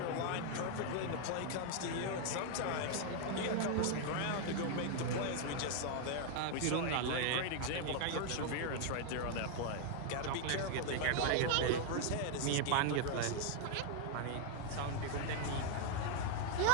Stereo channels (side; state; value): both; different; correlation 0.00